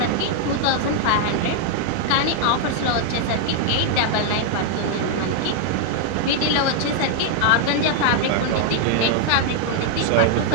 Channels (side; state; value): both; different; correlation 0.00